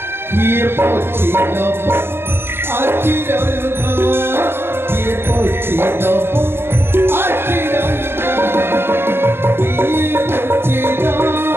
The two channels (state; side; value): late; left; 0.11 ms